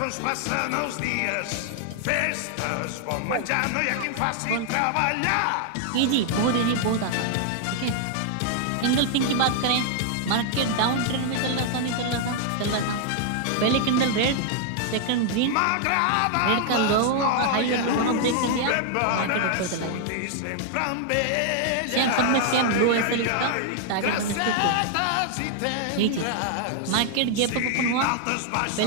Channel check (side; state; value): both; different; correlation 0.00